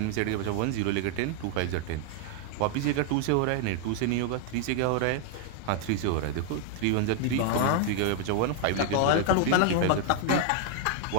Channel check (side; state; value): both; different; correlation 0.00